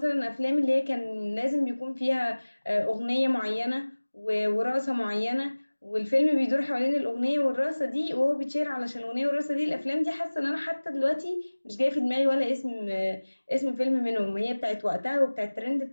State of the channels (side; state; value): both; inverted; correlation -1.00